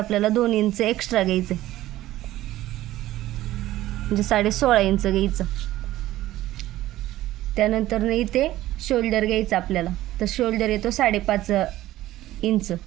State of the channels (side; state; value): left; quieter; 15.2 dB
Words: 2 इंच एक्स्ट्रा घ्यायचं, म्हणजे 16.5 इंच घ्यायचं. त्यानंतर इथे शोल्डर घ्यायचं आपल्याला. तर शोल्डर येतो 5.5 इंच.